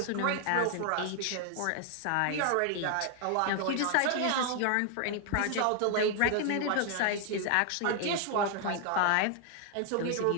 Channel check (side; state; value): both; different; correlation 0.00